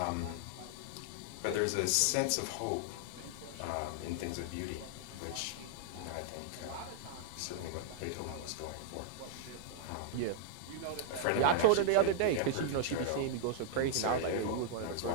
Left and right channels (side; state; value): both; different; correlation -0.01